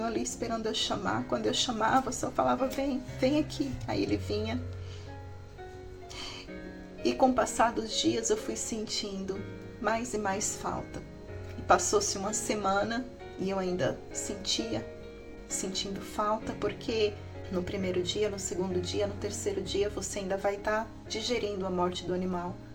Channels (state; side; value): identical; both; correlation 1.00